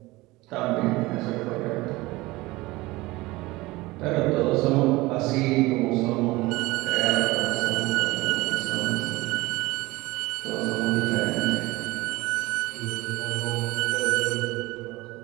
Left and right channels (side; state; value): left; quieter; 20.5 dB